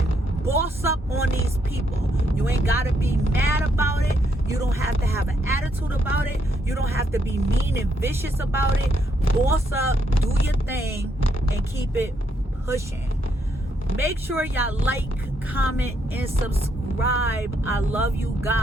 Boss up on these people. You ain't got to be mad about it. You don't have to have an attitude about it. You don't have to be mean and vicious about it. Boss up, do your thing, and keep it pushing. Make sure y'all like, comment, and subscribe. I love you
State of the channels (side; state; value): both; normal; correlation 0.76